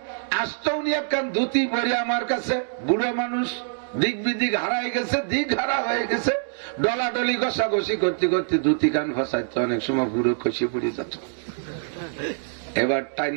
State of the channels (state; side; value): silent; left; digital silence